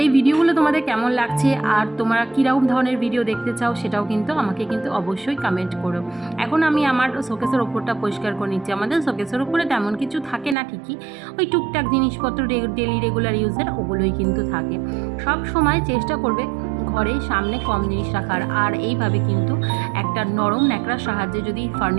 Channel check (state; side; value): drops out; left; at 10.6 s